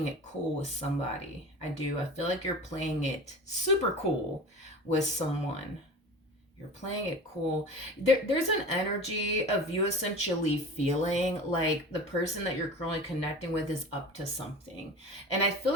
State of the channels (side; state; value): both; normal; correlation 0.35